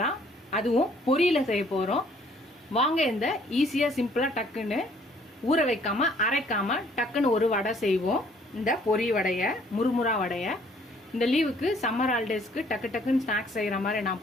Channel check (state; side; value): normal; both; correlation 0.61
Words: தான். அதுவும் பொரியில செய்ய போறோம். வாங்க இந்த ஈஸியா சிம்பிளா டக்குன்னு ஊற வைக்காம அரைக்காம டக்குன்னு ஒரு வடை செய்வோம். இந்த பொரி வடைய, முறுமுறா வடைய. இந்த லீவுக்கு சம்மர் ஹாலிடேஸ்க்கு டக்கு டக்குன்னு ஸ்நாக்ஸ் செய்யற மாதிரி நான்